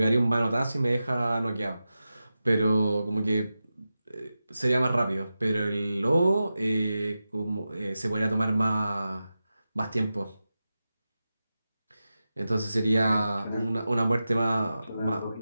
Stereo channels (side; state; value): both; inverted; correlation -0.92